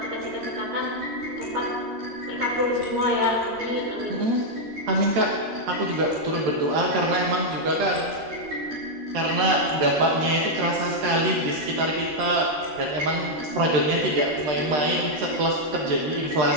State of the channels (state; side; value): late; left; 13 ms